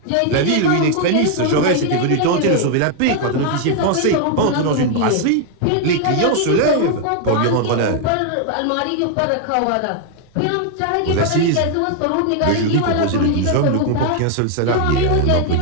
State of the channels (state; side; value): different; both; correlation 0.00